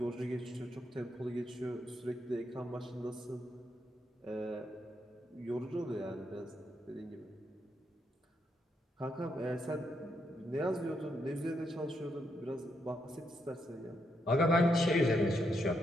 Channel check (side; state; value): both; normal; correlation 0.79